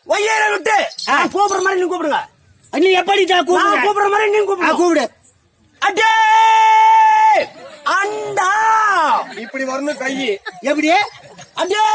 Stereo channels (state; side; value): identical; both; correlation 1.00